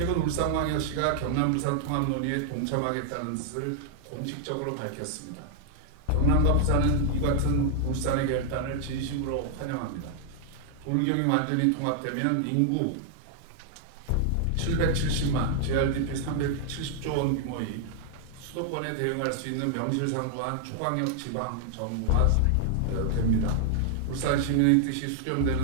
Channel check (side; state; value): both; different; correlation -0.01